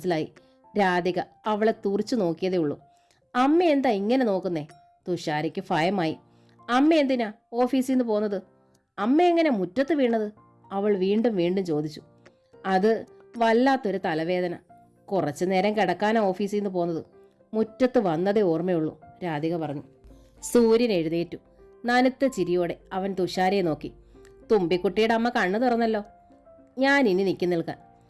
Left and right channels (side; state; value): both; identical; correlation 1.00